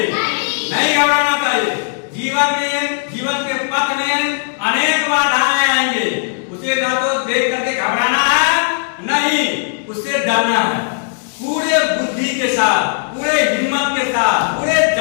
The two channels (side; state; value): right; silent; digital silence